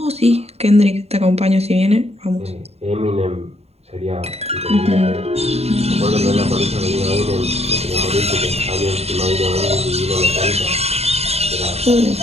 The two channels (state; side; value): late; left; 0.30 ms